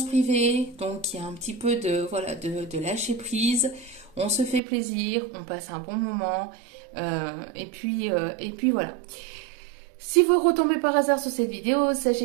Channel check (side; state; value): left; drops out; at 4.6 s